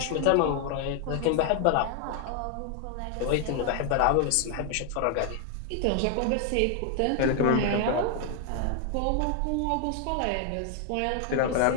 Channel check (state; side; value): different; both; correlation 0.00